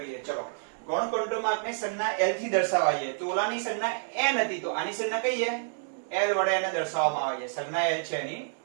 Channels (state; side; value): silent; left; digital silence